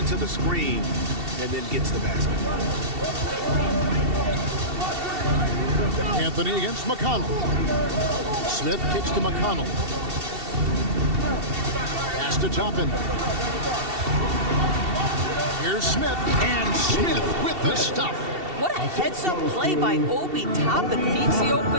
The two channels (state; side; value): late; left; 2.7 ms